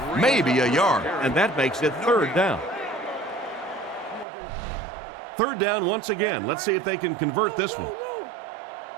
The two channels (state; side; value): drops out; left; at 4.2 s